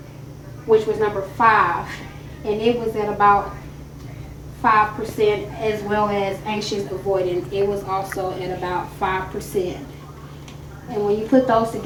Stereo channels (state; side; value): identical; both; correlation 1.00